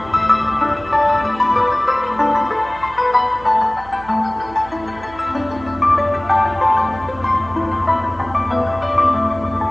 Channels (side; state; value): right; noise; hum, 19 dB below the sound